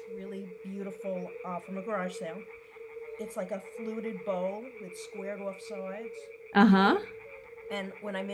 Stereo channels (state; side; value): identical; both; correlation 1.00